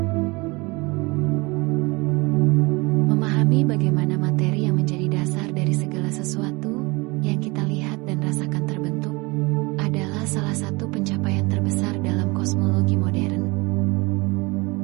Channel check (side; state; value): left; quieter; 25.3 dB